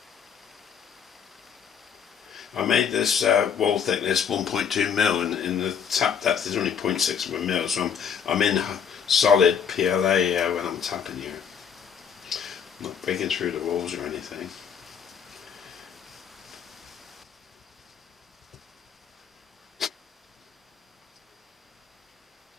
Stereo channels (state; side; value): quieter; right; 7.5 dB